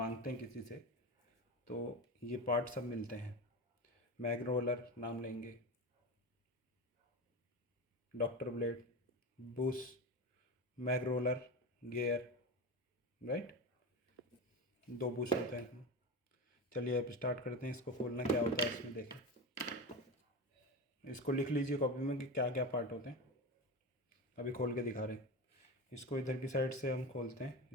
हैं किसी से, तो ये पार्ट सब मिलते हैं। मैग रोलर नाम लेंगे, doctor blade, bush, mag roller, gear, right, दो बुश होते हैं। चलिए अब स्टार्ट करते हैं। इसको खोलना क्या होता है इसमें देखें। इसको लिख लीजिए कॉपी में कि क्या क्या पार्ट होते हैं। अभी खोल के दिखा रहे हैं। इसको इधर की साइड से हम खोलते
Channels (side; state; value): both; normal; correlation 0.23